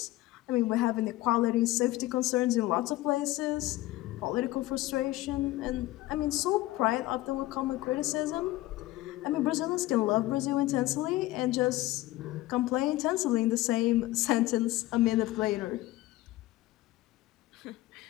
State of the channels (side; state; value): right; quieter; 17.2 dB